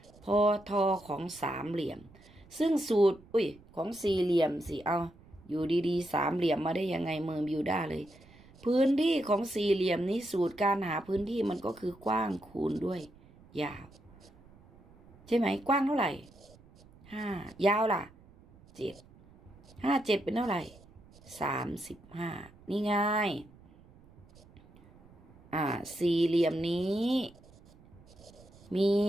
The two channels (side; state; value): right; noise; rumble, 25 dB below the sound